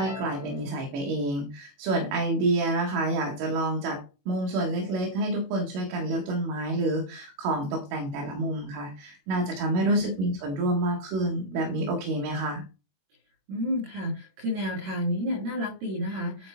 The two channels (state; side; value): late; left; 21 ms